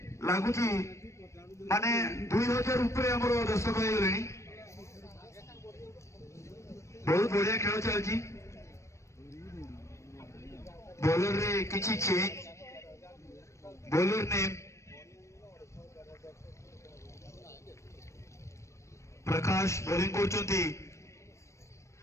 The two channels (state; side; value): late; right; 0.14 ms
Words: लगुच माने 2000 ऊपर आम दर्शक हो गले। बहुत बढ़िया खेल चलती। बॉलर रे किछि चेंज, बॉलर ने प्रकाश बॉलिंग करछंती,